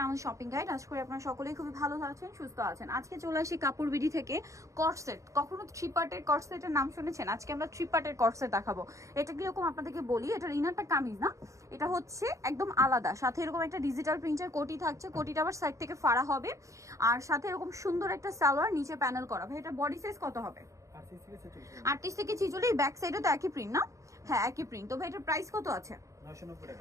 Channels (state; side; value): late; left; 0.15 ms